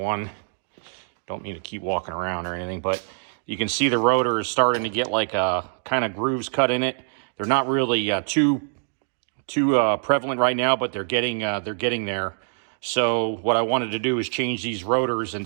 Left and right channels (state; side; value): silent; left; digital silence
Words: Don't need to keep walking around or anything, but you can see the rotor is starting to get like kind of grooves cut in it. They're not really too prevalent right now, but they're getting there. So what I wanted to do is change these rotors, and